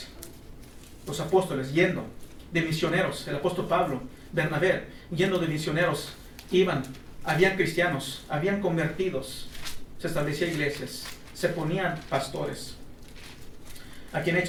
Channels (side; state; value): both; identical; correlation 1.00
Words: Los apóstoles yendo de misioneros, el apóstol Pablo, Bernabé, yendo de misioneros, iban. Habían cristianos, habían convertidos, se establecían iglesias, se ponían pastores. Aquí en